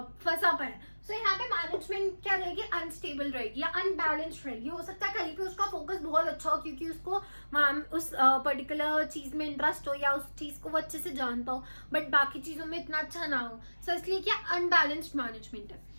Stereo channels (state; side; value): inverted; both; correlation -1.00